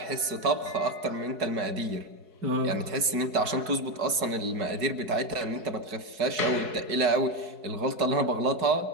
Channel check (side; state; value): left; late; 4.7 ms